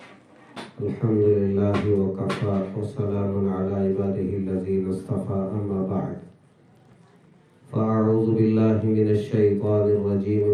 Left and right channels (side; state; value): both; identical; correlation 1.00